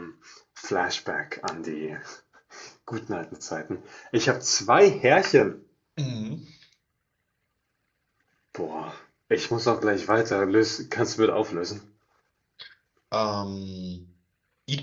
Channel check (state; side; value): identical; both; correlation 1.00